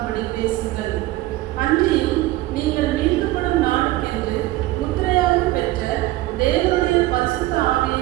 பேசுங்கள். அன்றியும் நீங்கள் மீட்கப்படும் நாளுக்கென்று முத்திரையாக பெற்ற தேவனுடைய பரிசுத்த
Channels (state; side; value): quieter; left; 17.3 dB